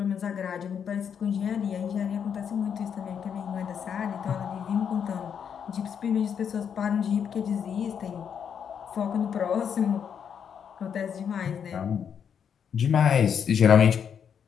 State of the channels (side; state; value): right; quieter; 7.7 dB